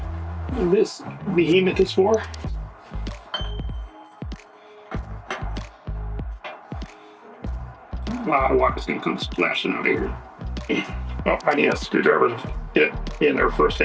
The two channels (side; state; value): both; identical; correlation 1.00